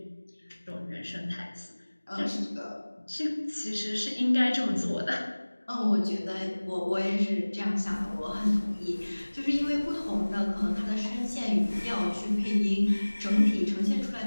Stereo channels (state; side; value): inverted; both; correlation -1.00